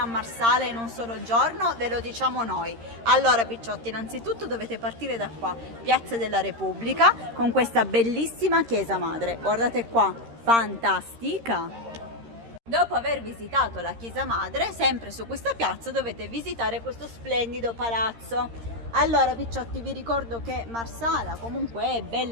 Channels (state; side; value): late; left; 13 ms